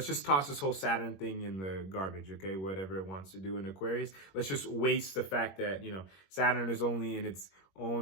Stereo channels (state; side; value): late; right; 21 ms